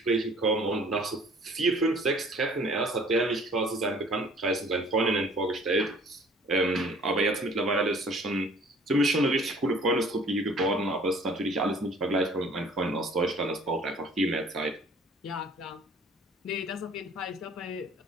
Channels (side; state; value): both; normal; correlation 0.53